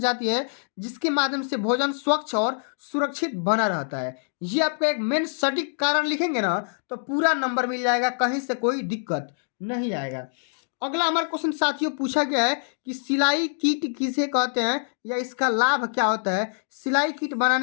है, जिसके माध्यम से भोजन स्वच्छ और सुरक्षित बना रहता है। ये आपका एक मेन सटीक कारण लिखेंगे ना तो पूरा नंबर मिल जाएगा, कहीं से कोई दिक्कत नहीं आएगा। अगला हमारा क्वेश्चन साथियों पूछा गया है कि सिलाई किट किसे कहते हैं या इसका लाभ क्या होता है। सिलाई किट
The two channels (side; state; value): right; silent; digital silence